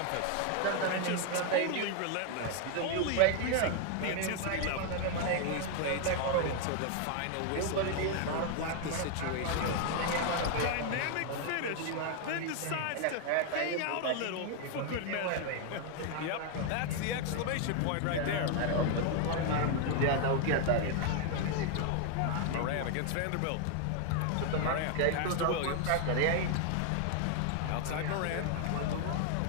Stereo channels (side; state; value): both; different; correlation 0.00